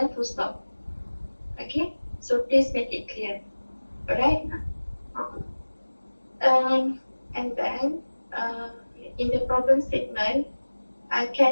full stop. Okay? So please make it clear. Alright? Okay. And then in the problem statement, I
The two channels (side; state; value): both; inverted; correlation -1.00